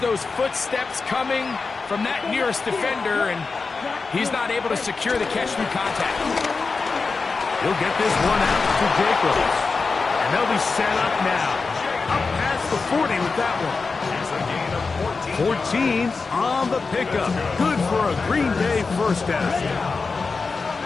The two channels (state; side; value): quieter; right; 4.4 dB